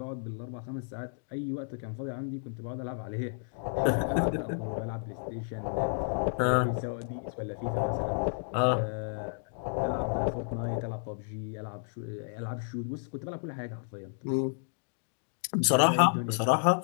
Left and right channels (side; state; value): right; silent; digital silence